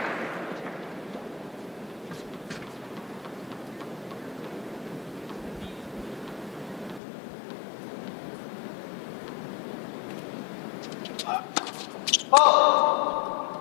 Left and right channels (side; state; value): right; drops out; at 7.0 s